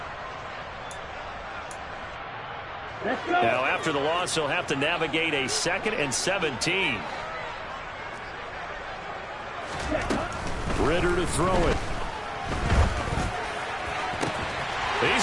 Now, after the loss, he'll have to navigate a 2nd and 17. Ritter to throw it.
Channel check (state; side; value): identical; both; correlation 1.00